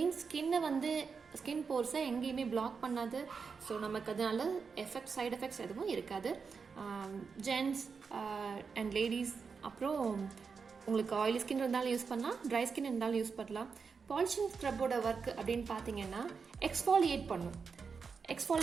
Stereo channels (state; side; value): quieter; left; 5.4 dB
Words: ஸ்கின்னை வந்து ஸ்கின் போர்ஸை எங்கேயுமே பிளாக் பண்ணாது. ஸோ நமக்கு அதனால சைடு எஃபெக்ட்ஸ் எதுவும் இருக்காது. ஜென்ட்ஸ் அண்ட் லேடிஸ், அப்புறம் உங்களுக்கு ஆயிலி ஸ்கின் இருந்தாலும் யூஸ் பண்ணலாம், ட்ரை ஸ்கின் இருந்தாலும் யூஸ் பண்ணலாம். பாலிஷிங் ஸ்க்ரப்போட ஒர்க் அப்படின்னு பார்த்தீங்கன்னா எக்ஸ்ஃபாலியேட் பண்ணும்.